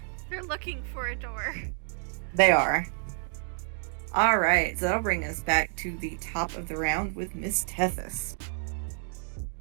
They're looking for a door. They are. Alright, so that'll bring us back to the top of the round with Miss Tethys.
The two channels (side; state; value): left; silent; digital silence